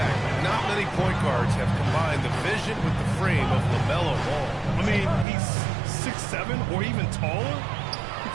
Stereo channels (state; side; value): drops out; left; at 5.2 s